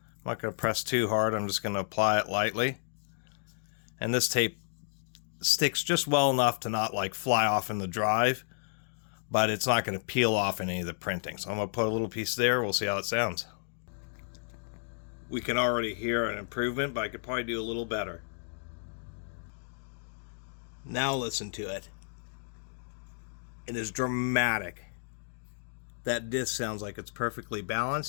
not going to press too hard. I'm just going to apply it lightly. And this tape sticks just well enough to not fly off in the drive, but it's not going to peel off any of the printing. So I'm going to put a little piece there. We'll see how it sounds. We can already hear an improvement, but I could probably do a little better. Now listen to it. It is dramatic. That disc sounds like it's perfectly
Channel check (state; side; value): silent; right; digital silence